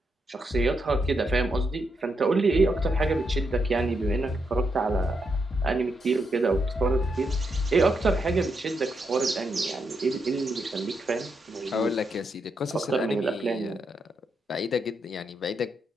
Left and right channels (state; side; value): normal; both; correlation 0.81